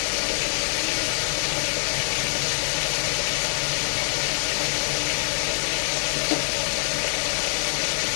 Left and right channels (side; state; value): right; silent; 62 dB below the other